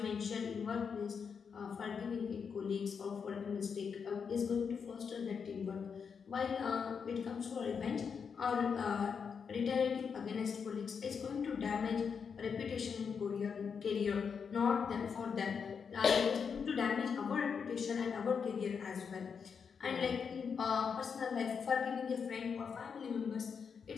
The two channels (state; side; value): quieter; right; 6.3 dB